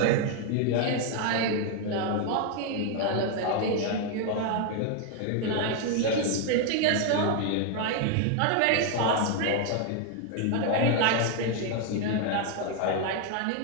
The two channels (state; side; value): different; both; correlation 0.01